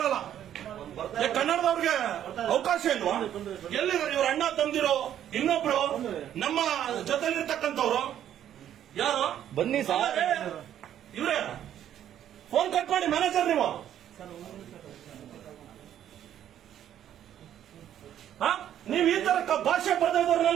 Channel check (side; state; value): left; quieter; 10.7 dB